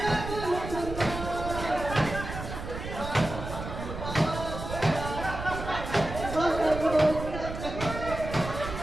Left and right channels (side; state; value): right; noise; rumble, 7 dB below the sound